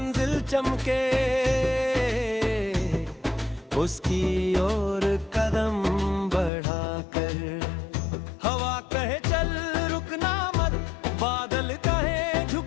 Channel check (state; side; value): drops out; right; at 6.5 s